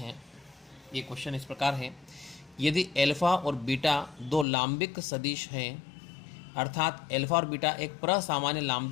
ये क्वेश्चन इस प्रकार है, यदि एल्फा और बीटा दो लांबिक सदिश हैं, अर्थात एल्फा और बीटा एक प्रसामान्य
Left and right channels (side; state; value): right; drops out; at 4.5 s